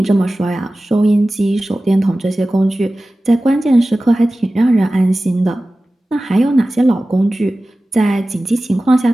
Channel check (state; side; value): normal; both; correlation 0.96